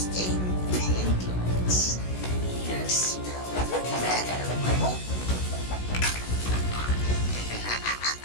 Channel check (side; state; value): right; late; 16 ms